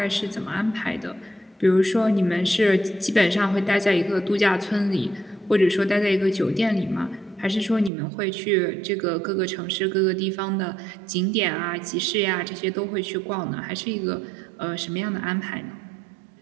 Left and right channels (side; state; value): left; drops out; at 7.9 s